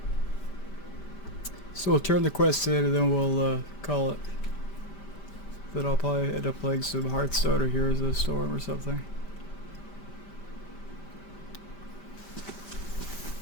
So we'll turn the quest in and then we'll call it. Then I'll probably end up playing some Hearthstone or Heroes of the Storm or something.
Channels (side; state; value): right; late; 5.1 ms